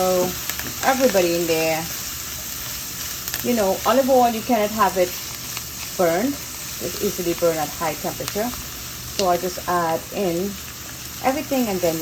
everybody in there. You know, olive oil, you cannot have it burned. It's easily burned at high temperature. So I just add in everything and then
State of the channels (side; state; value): both; identical; correlation 1.00